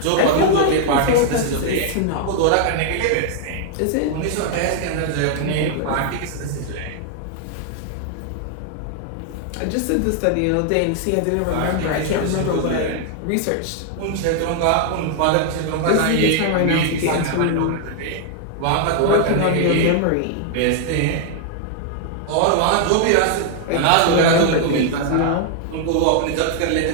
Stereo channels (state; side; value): different; both; correlation 0.00